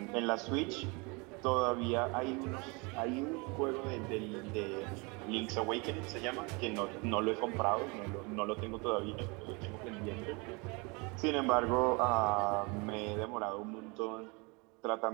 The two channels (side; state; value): left; quieter; 29.1 dB